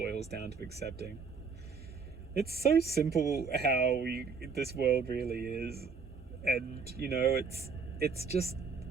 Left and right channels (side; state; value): left; quieter; 5.3 dB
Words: down to accepting. It's so simple how this world really is, and it's